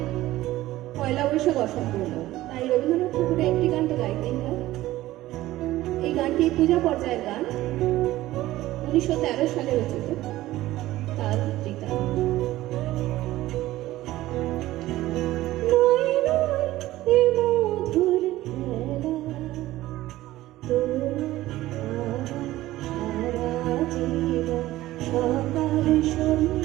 পয়লা বৈশাখ অসম্পূর্ণ, তাই রবীন্দ্রনাথ ঠাকুরের একটি গান তো গাইতেই হয়। এই গানটি পূজা পর্যায়ের গান, 1913 সালে রচিত। তার টিকা সকাল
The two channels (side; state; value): left; quieter; 16.1 dB